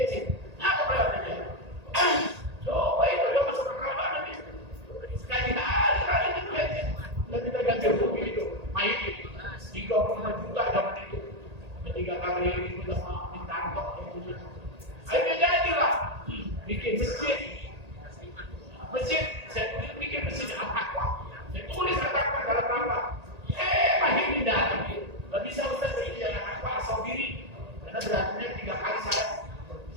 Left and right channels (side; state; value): left; late; 1.8 ms